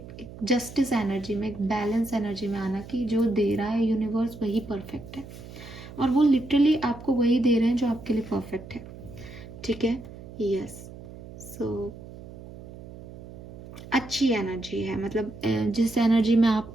जस्टिस एनर्जी में, एक बैलेंस एनर्जी में आना कि जो दे रहा है यूनिवर्स वही परफेक्ट है, और वो लिटरली आपको वही दे रहे हैं जो आपके लिए परफेक्ट है। ठीक है, यस। सो अच्छी एनर्जी है, मतलब जिस एनर्जी में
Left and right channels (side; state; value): right; noise; hum, 15 dB below the sound